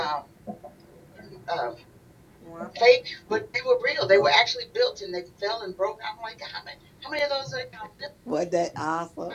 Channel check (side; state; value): both; identical; correlation 1.00